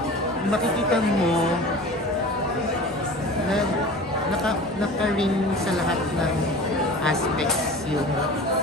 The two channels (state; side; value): normal; both; correlation 0.38